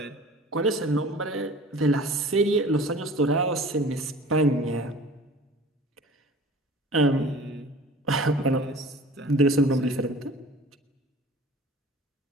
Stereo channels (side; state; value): both; normal; correlation 0.44